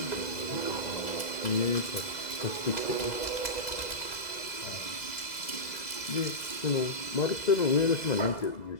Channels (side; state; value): right; late; 2.0 ms